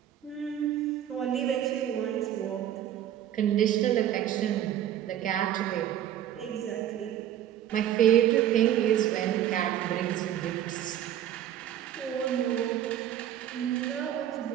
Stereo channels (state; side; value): quieter; left; 11.1 dB